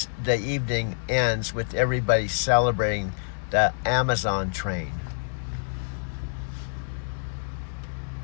evening ends with everybody celebrating the Amazon train.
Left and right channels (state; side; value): silent; right; digital silence